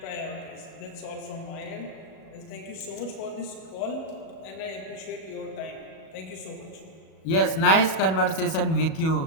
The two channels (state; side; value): late; right; 37 ms